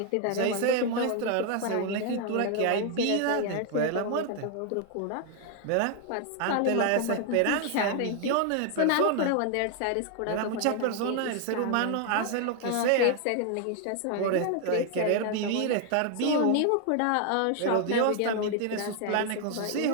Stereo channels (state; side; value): different; both; correlation 0.00